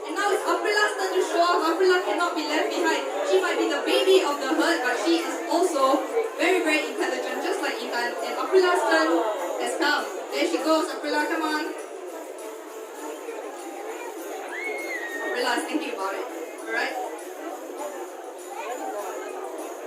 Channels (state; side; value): identical; both; correlation 1.00